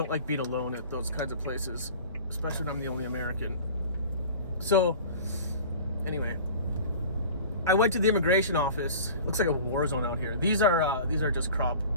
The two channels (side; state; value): both; inverted; correlation -0.40